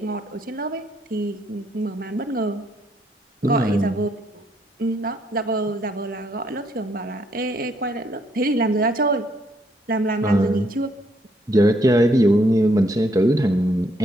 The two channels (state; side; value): normal; both; correlation 0.71